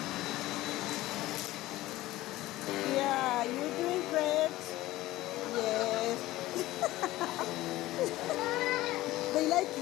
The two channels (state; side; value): quieter; right; 17.0 dB